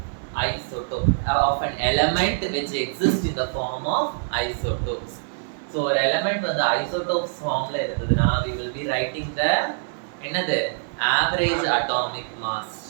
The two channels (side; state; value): left; silent; 62 dB below the other